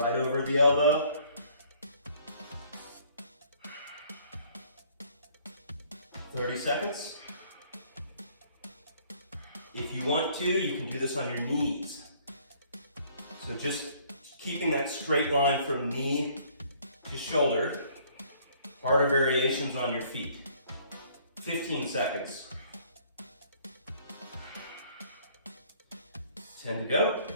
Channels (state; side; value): inverted; both; correlation -0.59